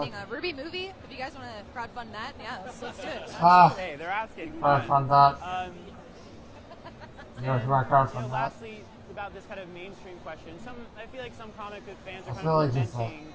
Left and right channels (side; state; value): both; identical; correlation 1.00